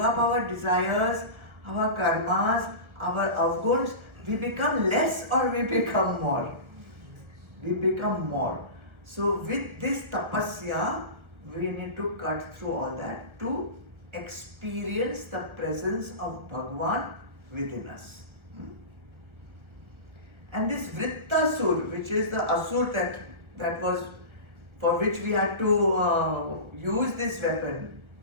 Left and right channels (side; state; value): left; late; 1.3 ms